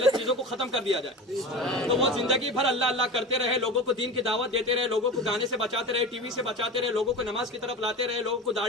چیزوں کو ختم کر دیا جائے، تو وہ زندگی بھر اللہ اللہ کرتے رہے، لوگوں کو دین کی دعوت دیتے رہے، لوگوں کو گانے سے بچاتے رہے، ٹی وی سے بچاتے رہے، لوگوں کو نماز کی طرف لاتے رہے، لوگوں کو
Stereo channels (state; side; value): normal; both; correlation 0.30